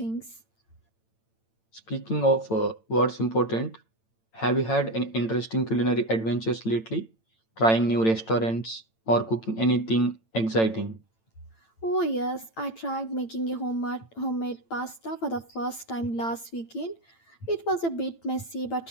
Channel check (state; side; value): late; right; 8.9 ms